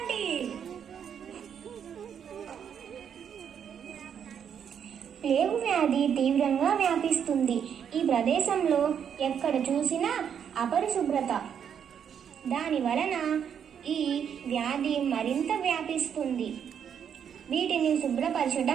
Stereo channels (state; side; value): quieter; left; 8.1 dB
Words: ప్లేగు వ్యాధి తీవ్రంగా వ్యాపిస్తుంది. ఈ ప్రదేశంలో ఎక్కడ చూసినా అపరిశుభ్రత. దాని వలన ఈ వ్యాధి మరింత వ్యాపిస్తుంది. వీటిని